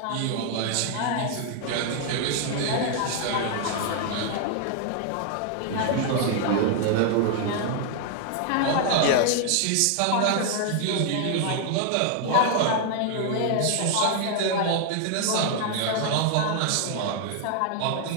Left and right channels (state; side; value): different; both; correlation 0.00